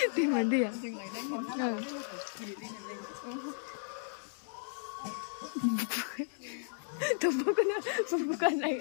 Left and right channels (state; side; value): silent; right; digital silence